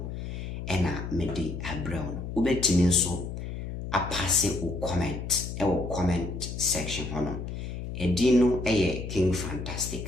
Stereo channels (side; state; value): left; noise; hum, 6 dB below the sound